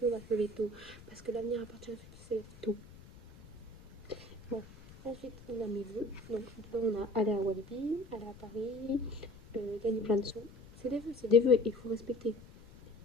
on va se lever tôt. Parce que l'avenir appartient à ceux qui se lèvent tôt. Bon, ensuite, on a mes vœux. Donc, dedans, on a aller à Walibi, aller à Paris, gagner plein de sous. C'est des vœux, il faut respecter.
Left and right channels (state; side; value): noise; left; rumble, 20 dB below the sound